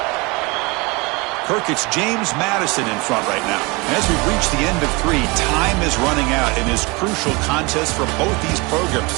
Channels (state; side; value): quieter; left; 26.4 dB